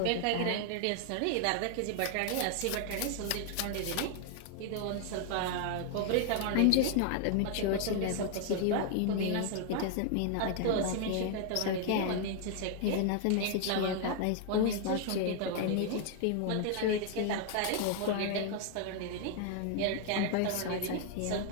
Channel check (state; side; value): different; both; correlation 0.00